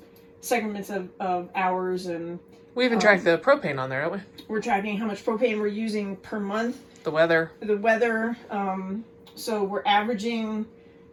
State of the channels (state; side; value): identical; both; correlation 1.00